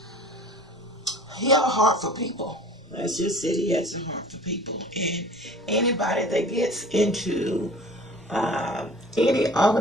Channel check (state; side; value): normal; both; correlation 0.45